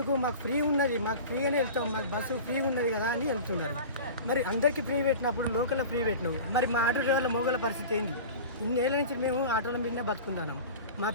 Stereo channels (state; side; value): inverted; both; correlation -0.35